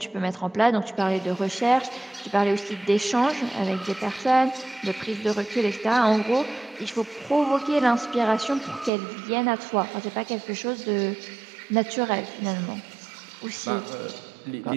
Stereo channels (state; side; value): drops out; left; at 8.9 s